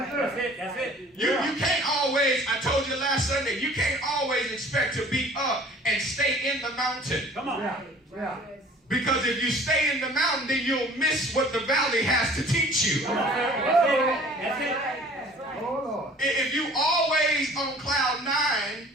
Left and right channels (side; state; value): both; normal; correlation 0.50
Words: That's it. You can't always, I told you last Sunday, you can't always expect to be up and stay in the mountain. Come on. Because if you stay in the mountain, then you'll miss what the valley has to teach you. That's it. Oh, Lord. If you always on cloud 9